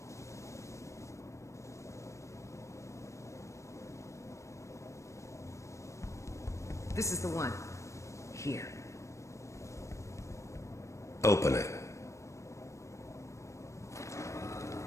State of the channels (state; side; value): late; right; 0.15 ms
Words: This is the one. Here. Open it.